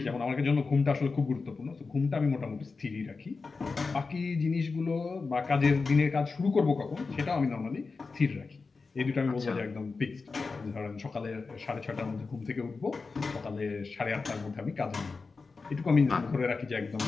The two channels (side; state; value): right; quieter; 4.3 dB